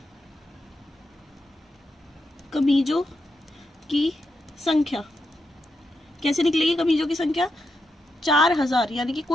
कमीजों की संख्या। कैसे निकलेगी कमीजों की संख्या? 4000 यानी कि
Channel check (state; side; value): normal; both; correlation 0.84